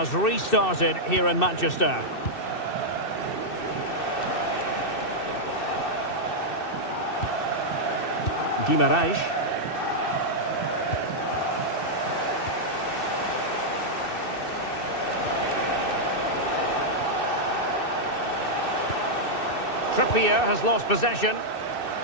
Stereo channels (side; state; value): right; late; 2.6 ms